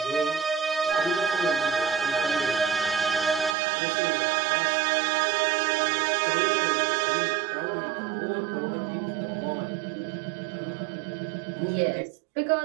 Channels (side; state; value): left; drops out; at 3.6 s